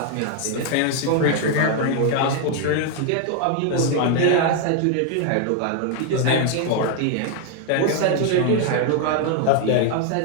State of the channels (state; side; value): different; both; correlation 0.00